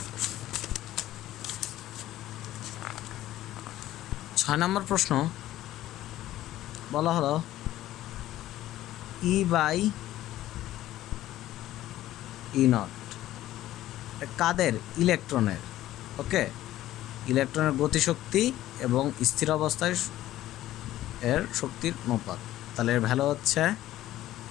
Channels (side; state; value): right; quieter; 14.3 dB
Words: প্রশ্ন। 6 নম্বর প্রশ্ন বলা হলো E/E0 কাদের? ইলেকট্রনের। ওকে, ইলেকট্রনের গতিশক্তি এবং স্থির অবস্থায় এর শক্তির অনুপাত। তাহলে এর ভ্যালু হচ্ছে